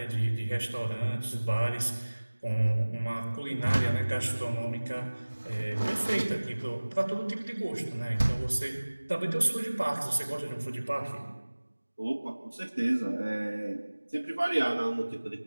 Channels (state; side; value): inverted; both; correlation -1.00